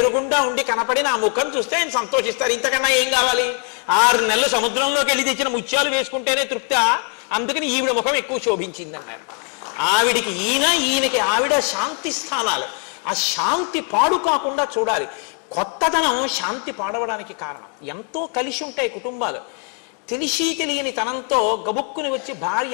ఉండి కనపడి నా ముఖం చూస్తే ఆయన సంతోషిస్తారు, ఇంతకన్నా ఏం కావాలి? 6 నెలలు సముద్రంలోకి వెళ్ళి తెచ్చిన ముత్యాలు వేసుకుంటేనే తృప్తి, అందుకని ఈవిడ ముఖం ఎక్కువ శోభించింది అన్నారు. ఆవిడికి ఈయనకి ఆవిడ శాంతి స్థానాలు. ఆ శాంతి పాడు కాకుండా చూడాలి. కొత్తదనం శాంతి పాడవడానికి కారణం. ఎంతో కలిసి ఉంటాయి కుటుంబాలు. తెలిసి తెలియని తనంతో గబుక్కుని వచ్చి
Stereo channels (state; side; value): quieter; right; 38.8 dB